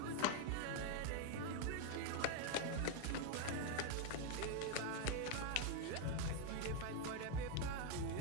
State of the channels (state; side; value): different; both; correlation 0.01